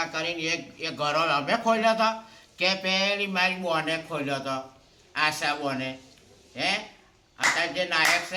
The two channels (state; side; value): identical; both; correlation 1.00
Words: કરીને એ ઘરો અમે ખોલ્યો હતો કે પેલી મારી બોને ખોલ્યો હતો, આશા બોને. હે, અત્યારે જે નાયક છે